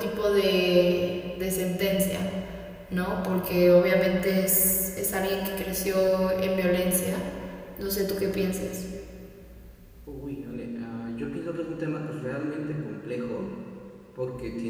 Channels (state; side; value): identical; both; correlation 1.00